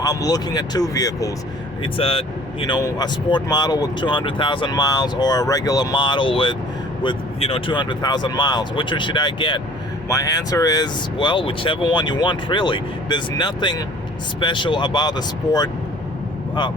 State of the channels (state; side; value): normal; both; correlation 0.51